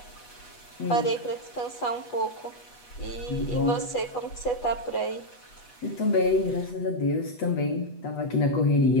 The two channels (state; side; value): late; right; 8.2 ms